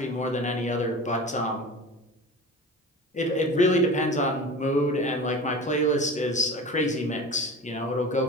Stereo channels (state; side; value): normal; both; correlation 0.35